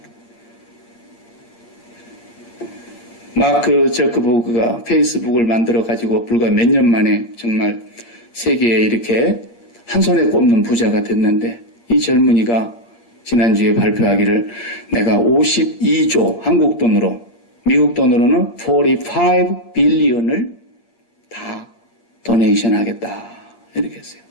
마크 저크버그가 페이스북을 만들어가지고 불과 몇 년 만에 정말 세계에 이렇게 한 손에 꼽는 부자가 됐는데, 이 젊은이가 지난주에 발표하기를 내가 52조 한국 돈으로, 미국 돈으로는 45 빌리언을 다 도네이션 하겠다 이렇게 했어요.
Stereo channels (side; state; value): right; late; 8.5 ms